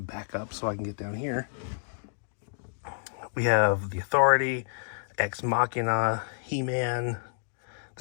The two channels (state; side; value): silent; right; digital silence